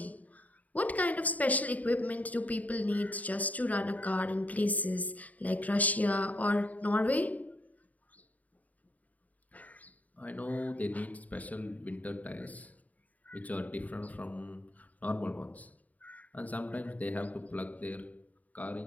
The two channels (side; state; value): right; late; 0.074 ms